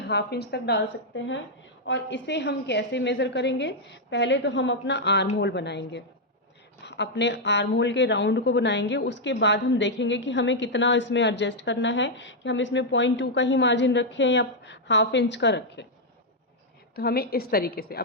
½ इंच तक डाल सकते हैं। और इसे हम कैसे मेज़र करेंगे? पहले तो हम अपना आर्म होल बनाएंगे, अपने आर्म होल के राउंड को बनाएंगे। उसके बाद हम देखेंगे कि हमें कितना इसमें एडजस्ट करना है, कि हम इसमें 0.2 का ही मार्जिन रखें या ½ इंच का रखें। तो हमें इस तरीके से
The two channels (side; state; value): both; normal; correlation -0.02